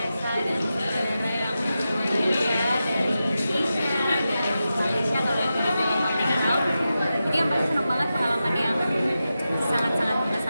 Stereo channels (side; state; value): both; inverted; correlation -0.91